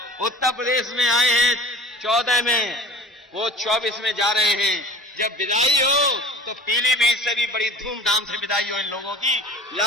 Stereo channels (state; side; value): normal; both; correlation 0.41